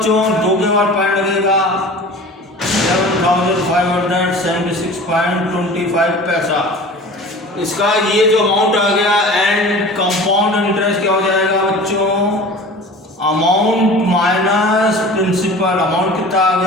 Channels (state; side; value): normal; both; correlation 0.40